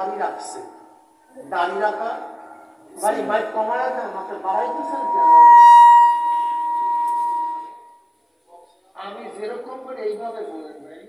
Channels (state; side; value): identical; both; correlation 1.00